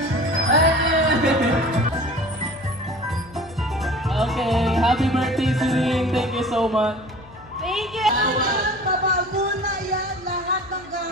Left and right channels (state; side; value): noise; left; hum, 22 dB below the sound